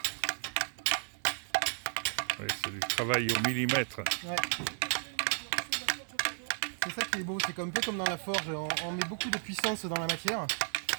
Oui, c'est du travail au millimètre. Ouais. C'est ça qui est beau, c'est un peu comme dans la forge, on met beaucoup de puissance dans la matière,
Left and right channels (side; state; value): left; silent; 56 dB below the other